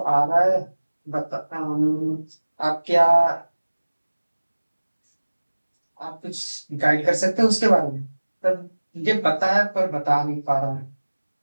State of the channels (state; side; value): inverted; both; correlation -1.00